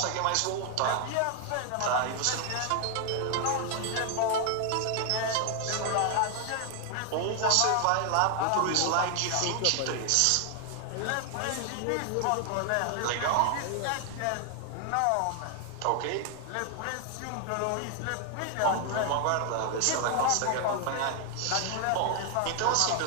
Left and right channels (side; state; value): both; different; correlation 0.00